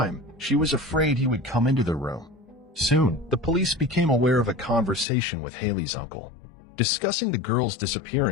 she was afraid he would come into the room. Soon, the police became aware of a conversation with Haley's uncle. Discussing the girl's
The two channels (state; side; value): drops out; right; at 5.1 s